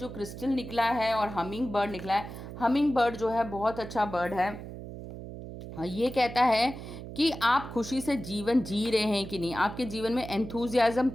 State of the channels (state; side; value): noise; right; hum, 11 dB below the sound